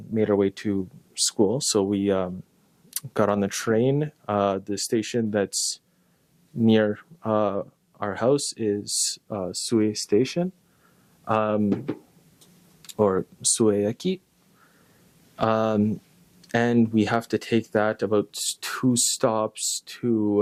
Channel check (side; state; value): both; identical; correlation 1.00